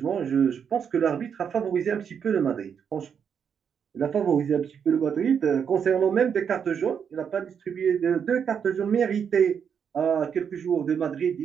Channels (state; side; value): quieter; left; 7.4 dB